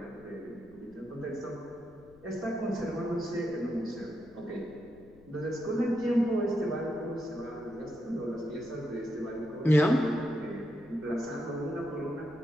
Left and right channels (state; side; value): noise; left; rumble, 25 dB below the sound